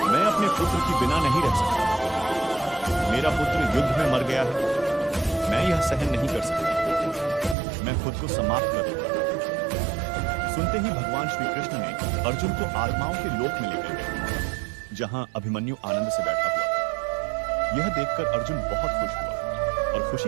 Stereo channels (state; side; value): drops out; left; at 7.6 s